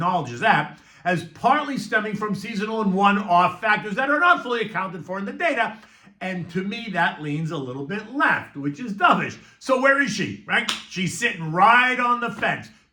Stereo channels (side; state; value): both; identical; correlation 1.00